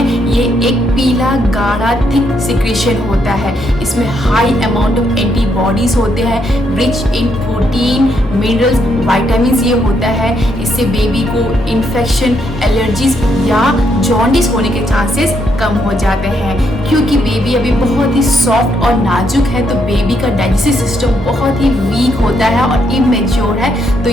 ये एक पीला गाढ़ा थिक सिक्रेशन होता है। इसमें हाई अमाउंट ऑफ एंटीबॉडीज़ होते हैं, rich in protein, minerals, vitamin ये होता है। इससे बेबी को इन्फेक्शन, एलर्जीज या जॉन्डिस होने के चांसेस कम हो जाते हैं। क्योंकि बेबी अभी बहुत ही सॉफ्ट और नाजुक है, तो बेबी का डाइजेस्टिव सिस्टम बहुत ही वीक होता है और इमेच्योर है, तो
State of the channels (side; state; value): both; normal; correlation 0.76